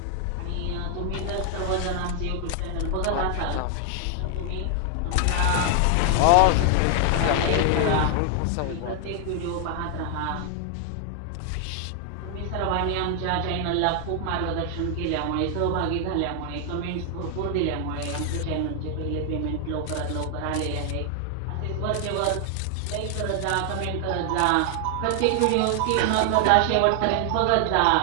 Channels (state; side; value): different; both; correlation 0.00